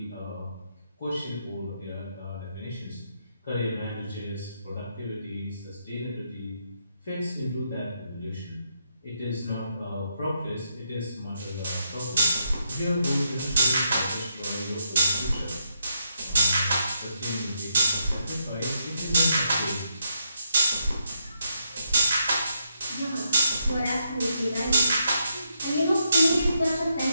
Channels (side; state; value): both; inverted; correlation -0.80